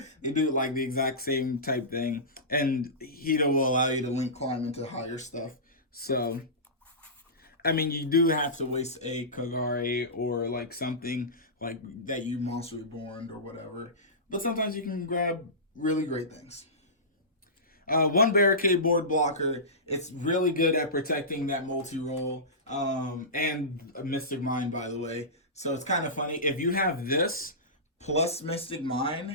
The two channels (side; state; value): both; normal; correlation -0.20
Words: They do like the exact same type thing, and Hida will allow you to link climb into higher stuff. So, I mean, you do have to waste a Kagari or like something like that you Monster Reborn or whatever. But sometimes you can grab really great things. 1 Barricade Board Blocker. It's really good at protecting that multi-roll and a Mystic Mine, by the way. So it's kind of funny. If you have this plus Mystic